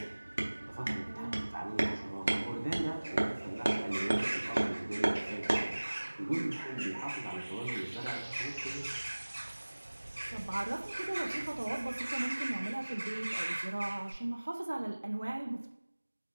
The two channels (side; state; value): both; inverted; correlation -1.00